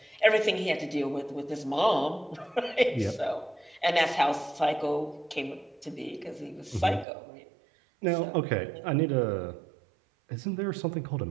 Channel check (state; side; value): drops out; left; at 7.1 s